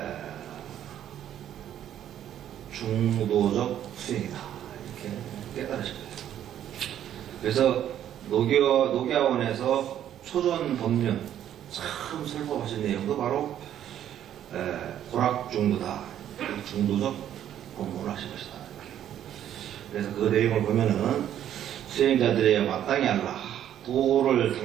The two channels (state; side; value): quieter; left; 10.8 dB